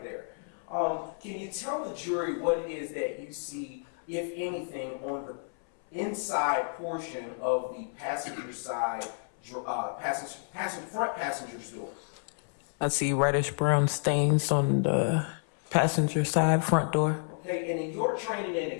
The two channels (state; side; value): silent; right; 58 dB below the other